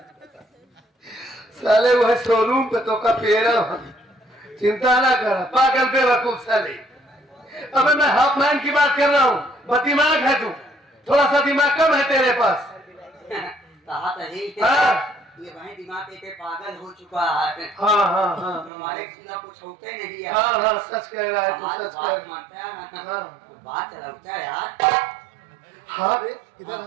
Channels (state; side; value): drops out; left; at 18.7 s